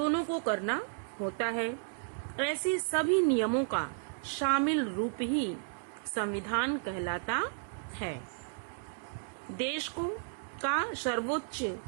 को करना होता है। ऐसे सभी नियमों का शामिल रूप ही संविधान कहलाता है। देश का सर्वोच्च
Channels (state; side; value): silent; left; digital silence